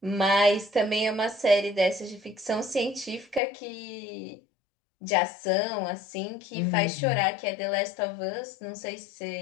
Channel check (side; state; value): right; drops out; at 3.4 s